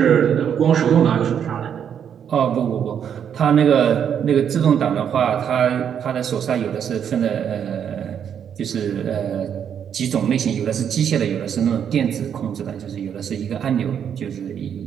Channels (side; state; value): left; quieter; 8.4 dB